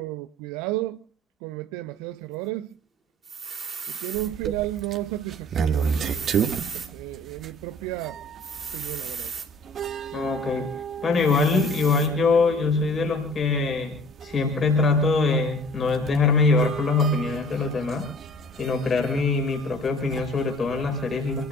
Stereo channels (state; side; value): normal; both; correlation 0.50